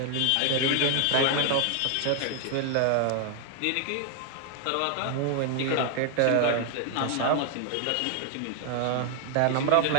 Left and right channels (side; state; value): both; different; correlation 0.00